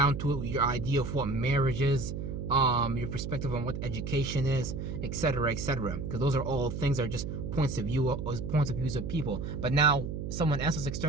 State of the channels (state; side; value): noise; right; hum, 5 dB below the sound